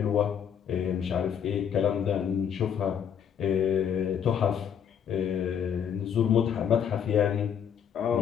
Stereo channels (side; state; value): right; quieter; 8.2 dB